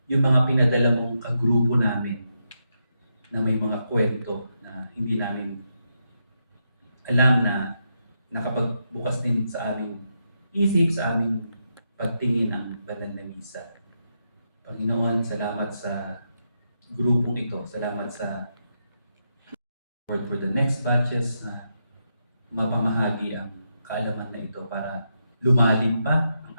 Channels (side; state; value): both; inverted; correlation -0.83